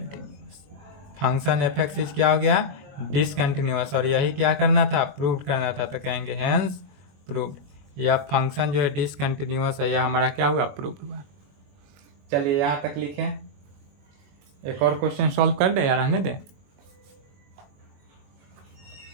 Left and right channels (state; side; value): late; left; 21 ms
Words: Function f x is क्या हो गया, डिसकंटिन्यूअस, और यही क्या करना था, प्रूव करना था, तो कहेंगे हेंस प्रूव्ड। यह फंक्शन जो है डिसकंटिन्यूअस है, यह हमारा क्या हुआ, प्रूव हुआ। चलिए यहाँ तक लिखें, एक और क्वेश्चन सॉल्व कर दे या रहने दे।